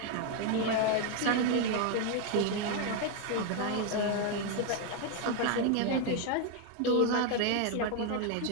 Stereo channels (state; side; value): different; both; correlation 0.01